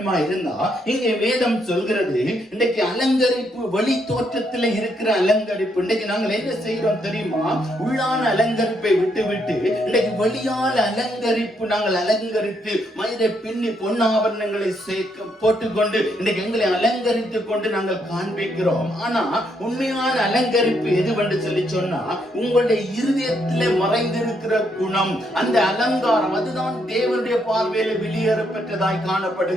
இருந்தா இங்கே வேதம் சொல்கிறது இன்றைக்கு அலங்கரிப்பு வெளி தோற்றத்தில் இருக்கிற அலங்கரிப்பு. இன்றைக்கு நாங்கள் என்ன செய்கிறோம் தெரியுமா? உள்ளான அலங்கரிப்பை விட்டு இன்றைக்கு வெளியான அலங்கரிப்பு நாங்கள் அலங்கரித்து மயிரை பின்னி பொன்னாபரணங்களை போட்டுக்கொண்டு இன்றைக்கு எங்களை அலங்கரித்துக் கொண்டு நாங்கள் காண்பிக்கிறோம். ஆனா உண்மையான அலங்கரிப்பு எதுவென்று சொல்லி சொன்னா உங்களுடைய இருதயத்திலே மறைந்திருக்கிற குணம், அந்த அலங்காரம், அதுதான் தேவனுடைய பார்வையில வெளியேற பெற்றதாய்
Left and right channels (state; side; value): normal; both; correlation 0.75